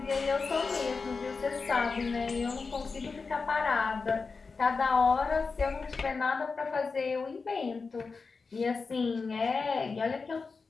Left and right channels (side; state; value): right; quieter; 4.5 dB